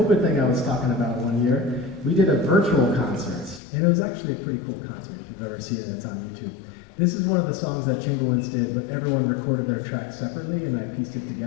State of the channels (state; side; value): drops out; right; at 3.6 s